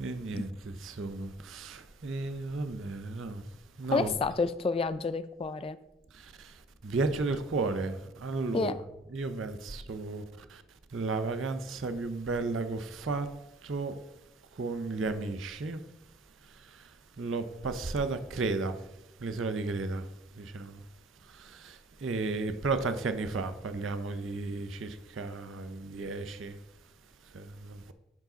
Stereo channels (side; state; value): both; normal; correlation 0.50